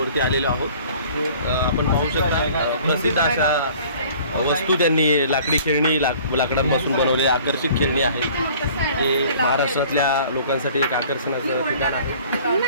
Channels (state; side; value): inverted; both; correlation -0.50